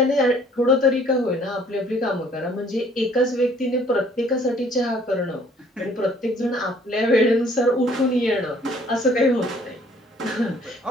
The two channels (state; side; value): normal; both; correlation 0.58